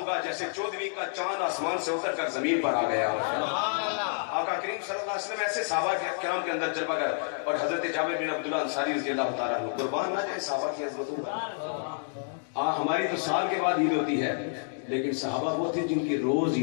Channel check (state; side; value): silent; right; digital silence